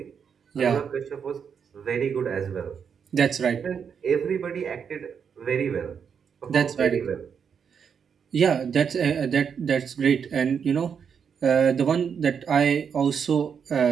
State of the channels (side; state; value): left; quieter; 7.0 dB